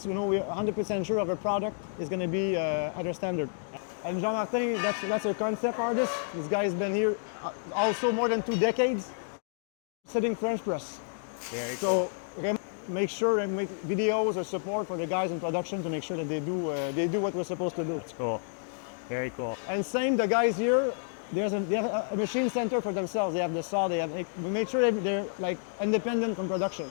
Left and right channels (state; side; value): silent; right; digital silence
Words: we're 100% sure of our product is going to be at our standard. And Jean-Martin, that's a concept artist. This guy's been here also more than 2 decades, sitting French press. So make sure and make videos or support for the guys in production to make sure that they do what we're supposed to do. That's cool. Very cool. And same, the guys here, they have a machine center for themselves. They have the saw. We make sure they're like independent from production.